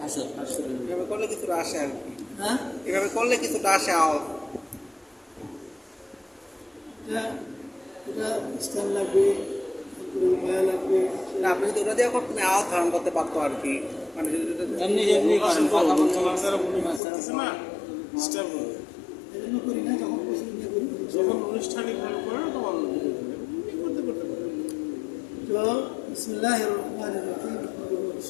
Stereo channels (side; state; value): right; drops out; at 17.0 s